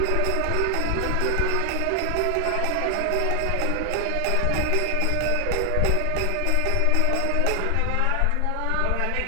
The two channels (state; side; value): different; both; correlation 0.00